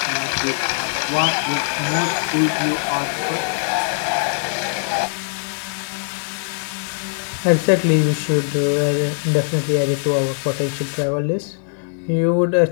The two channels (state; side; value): silent; right; digital silence